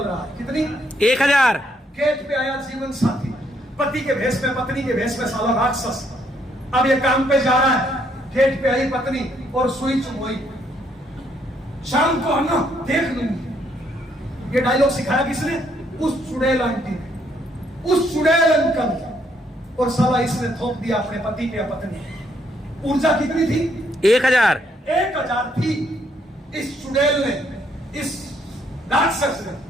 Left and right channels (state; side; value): normal; both; correlation 0.71